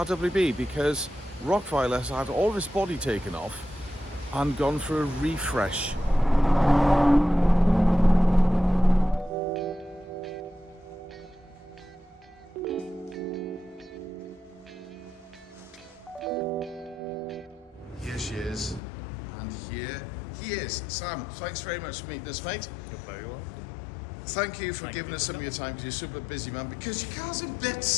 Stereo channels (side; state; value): right; drops out; at 18.8 s